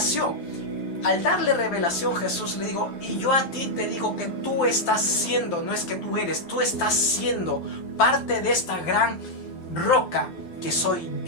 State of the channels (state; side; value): late; right; 12 ms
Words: Al darle revelación, Jesús le dijo, y yo a ti te digo que tú estás siendo, no es que tú eres, tú estás siendo parte de esta gran roca que soy